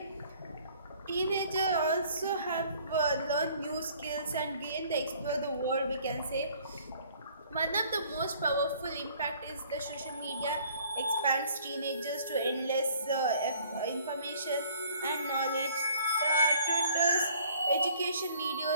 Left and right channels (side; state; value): both; inverted; correlation -0.56